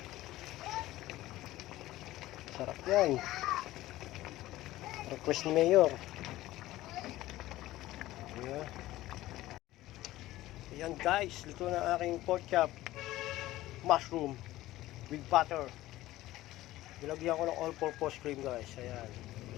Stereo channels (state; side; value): quieter; right; 16.2 dB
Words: Sarap yan. Request ni Mayor. Ayan. Ayan guys, luto na aking pork chop. Mushroom with butter. Nilagyan ko ng all-purpose cream guys. Ayan.